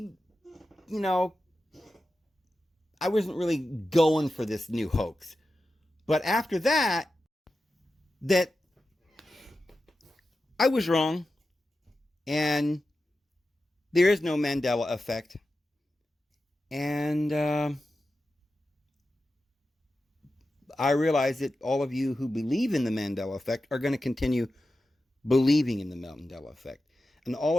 going for this new hoax. But after that I was wrong. And there is no Mandela Effect. And I realize that all of you who believe in the Mandela Effect are going to continue believing in the Mandela Effect. And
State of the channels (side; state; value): both; normal; correlation 0.92